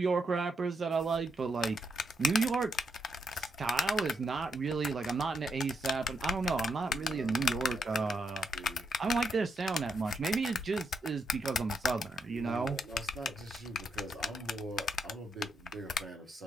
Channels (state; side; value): normal; both; correlation 0.80